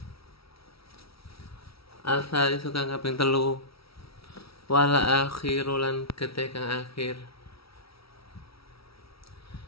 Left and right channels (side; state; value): right; late; 0.76 ms